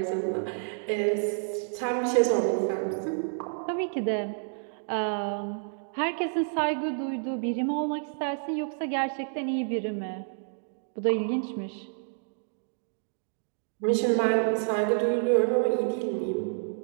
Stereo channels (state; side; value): silent; left; digital silence